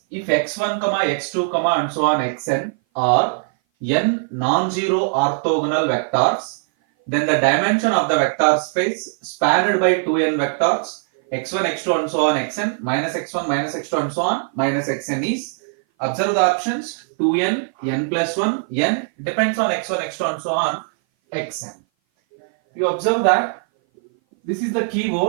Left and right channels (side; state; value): left; silent; 58 dB below the other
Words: if x1, x2, and so on xn are n non-zero orthogonal vectors, then the dimension of the vector space spanned by 2n vectors x1, x2 and so on xn minus x1 minus x2 and so on minus xn is, observe the options, 2n, n plus 1, n depends on x1, x2 and so on xn. You observe that this is the